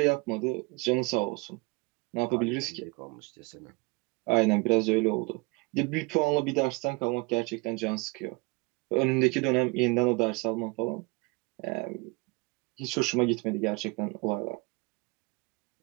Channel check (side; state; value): left; quieter; 27.1 dB